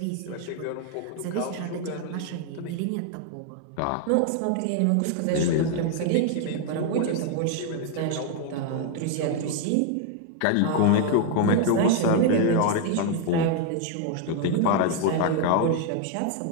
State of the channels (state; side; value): different; both; correlation 0.00